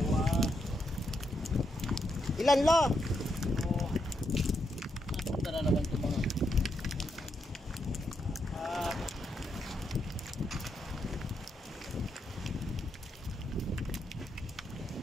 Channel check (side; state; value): both; normal; correlation 0.81